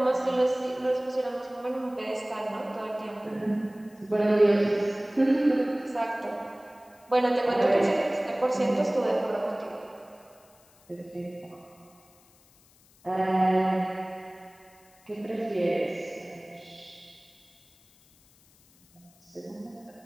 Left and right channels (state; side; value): noise; left; hiss, 29 dB below the sound